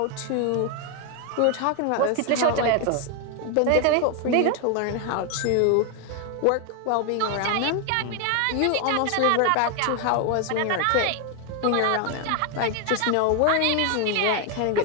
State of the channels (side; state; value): both; different; correlation 0.00